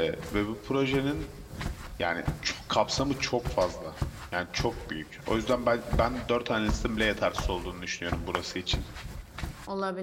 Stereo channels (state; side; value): identical; both; correlation 1.00